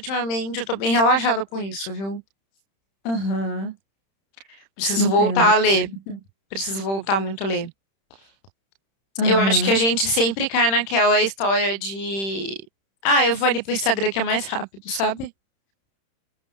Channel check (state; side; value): late; right; 31 ms